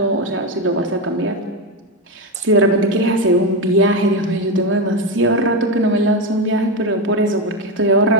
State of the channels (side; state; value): both; normal; correlation 0.13